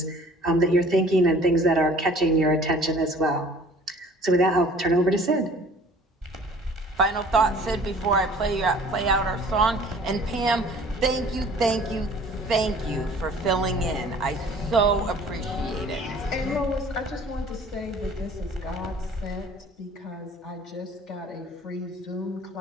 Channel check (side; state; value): both; normal; correlation 0.50